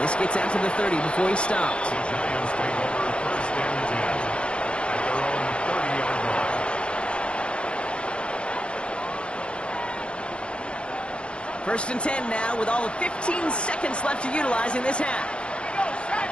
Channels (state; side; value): late; right; 0.057 ms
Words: this gets out to the 30 before he stops. The Giants take over first and 10 at their own 30-yard line. First and 10 now with all of 15 seconds left to utilize in this half.